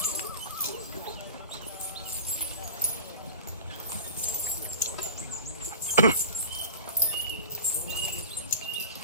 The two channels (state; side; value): inverted; both; correlation -0.36